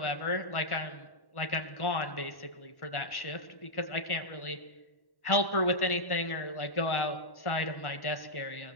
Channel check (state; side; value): late; right; 1.1 ms